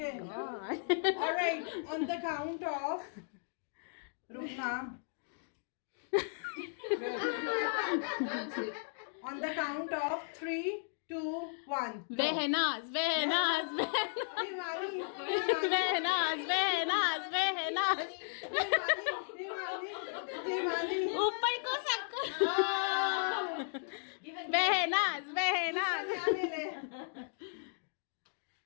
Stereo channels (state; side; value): silent; right; digital silence